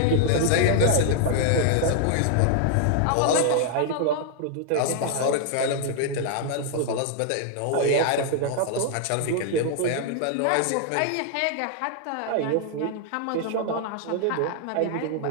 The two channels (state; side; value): different; both; correlation 0.00